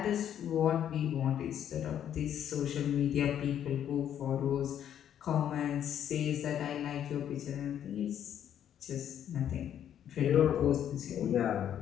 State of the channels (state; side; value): quieter; right; 9.9 dB